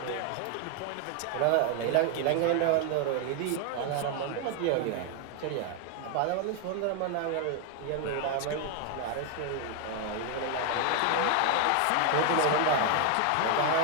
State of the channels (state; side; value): different; both; correlation 0.00